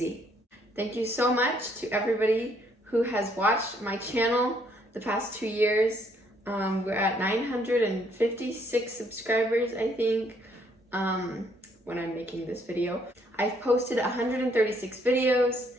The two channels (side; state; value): both; normal; correlation 0.68